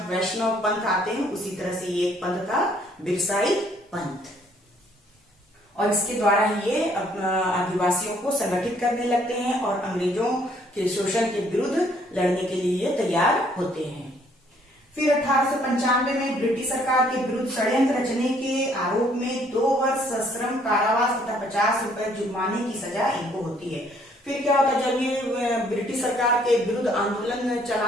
वैष्णव पंथ आते हैं, उसी तरह से ये एक पंथ था, बिरसाई पंथ। और इसके द्वारा ये आदिवासियों को संगठित करने लगते हैं और अंग्रेजों के शोषण के विरुद्ध लड़ने के लिए ये तैयार होते हैं। फिर 1895 में ब्रिटिश सरकार के विरुद्ध षड्यंत्र रचने के आरोप में 2 वर्ष सश्रम कारावास तथा 50 रुपए जुर्माने की सजा इनको होती है। फिर क्या होता है, जब ये ब्रिटिश सरकार के विरुद्ध आंदोलन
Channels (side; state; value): both; normal; correlation 0.64